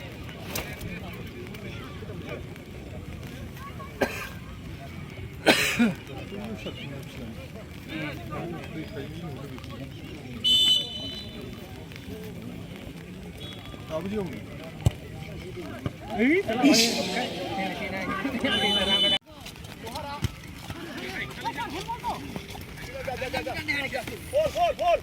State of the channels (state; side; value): identical; both; correlation 1.00